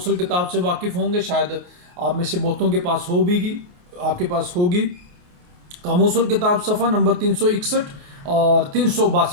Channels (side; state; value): left; late; 28 ms